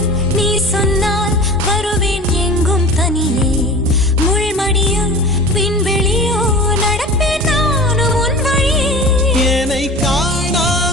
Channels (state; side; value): normal; both; correlation 0.37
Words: நீ சொன்னால் வருவேன் எங்கும் தனியே, முள்மடியும் விண்வெளியோ நடப்பேன் நானும் உன் வழியே. என்னை